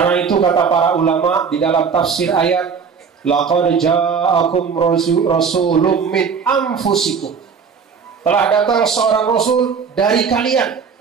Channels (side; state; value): left; quieter; 6.1 dB